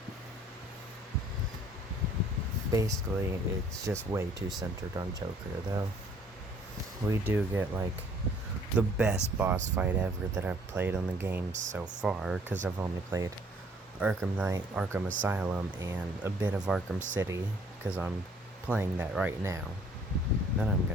Basically, it's just way too centered on Joker, though. We do get, like, the best boss fight ever that I've played on the game so far, because I've only played Arkham Knight, Arkham Asylum, and a bit of Arkham City, because I'm playing that right now. Then I'm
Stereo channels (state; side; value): normal; both; correlation 0.59